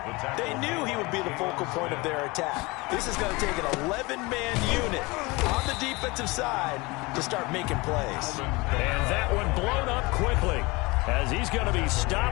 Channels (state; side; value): quieter; right; 24.3 dB